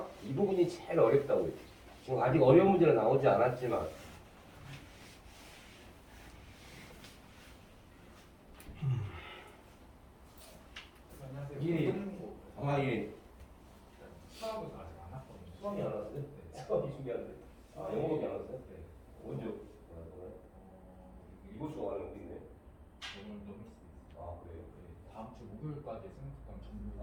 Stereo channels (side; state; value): both; identical; correlation 1.00